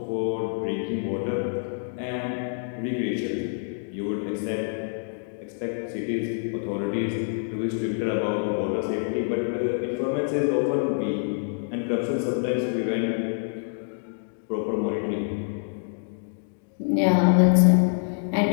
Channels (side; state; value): right; silent; digital silence